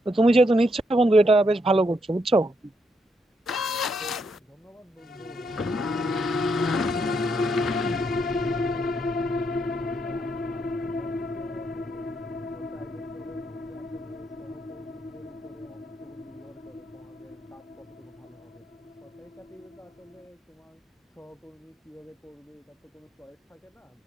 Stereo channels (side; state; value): both; normal; correlation 0.77